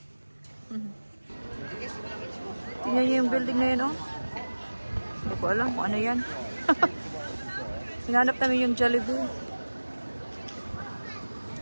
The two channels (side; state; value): both; inverted; correlation -1.00